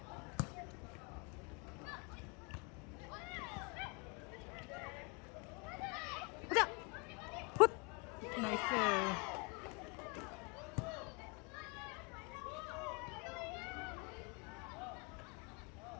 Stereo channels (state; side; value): quieter; right; 30.8 dB